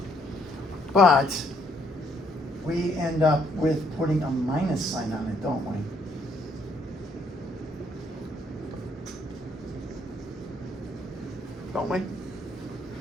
But we end up with putting a minus sign on it, don't we? Don't we?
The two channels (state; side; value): normal; both; correlation 0.69